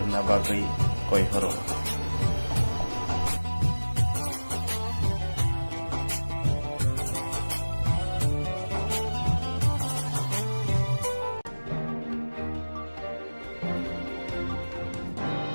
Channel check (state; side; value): inverted; both; correlation -1.00